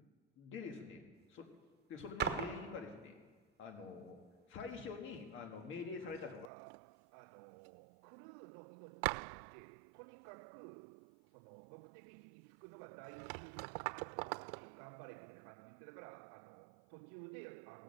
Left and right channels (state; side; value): drops out; left; at 6.5 s